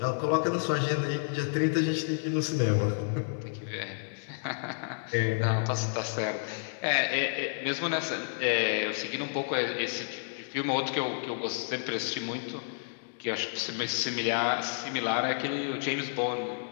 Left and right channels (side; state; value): right; silent; digital silence